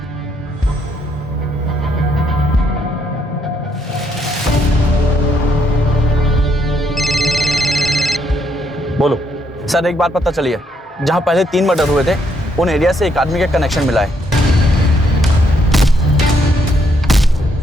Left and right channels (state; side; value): normal; both; correlation 0.73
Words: बोलो सर, एक बात पता चली है, जहां पहले 3 मर्डर हुए थे उन एरिया से एक आदमी का कनेक्शन मिला है।